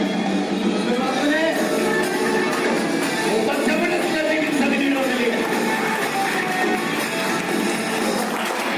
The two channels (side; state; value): both; identical; correlation 1.00